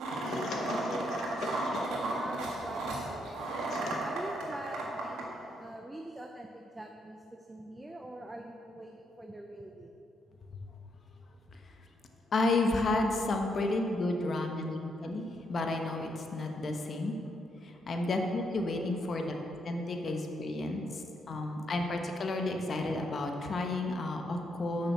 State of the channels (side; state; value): both; normal; correlation 0.77